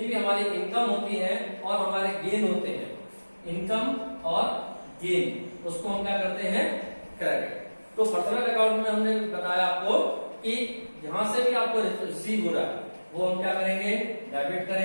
भी हमारी इनकम होती है और हमारे गेन होते हैं, इनकम और गेन, उसको हम क्या करते हैं, क्रेडिट। तो पर्सनल अकाउंट में हमने बताया आपको कि जहां से भी आपको रिसीव हो रहा है वो हम क्या करेंगे, डेबिट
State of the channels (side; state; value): both; inverted; correlation -1.00